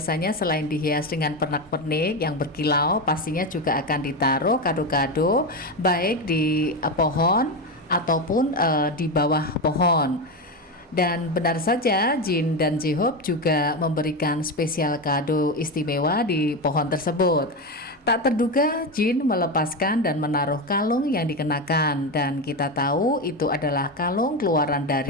selain dihias dengan pernak-pernik yang berkilau, pastinya juga akan ditaruh kado-kado baik di pohon ataupun di bawah pohon. Dan benar saja Jin dan J-Hope juga memberikan spesial kado istimewa di pohon tersebut. Tak terduga Jin melepaskan dan menaruh kalung yang dikenakan, dan kita tahu itu adalah kalung keluaran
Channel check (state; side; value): normal; both; correlation 0.15